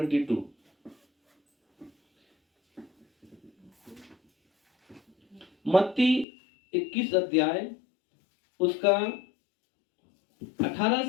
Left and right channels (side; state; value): right; drops out; at 6.2 s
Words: मत्ती 21 अध्याय उसका 18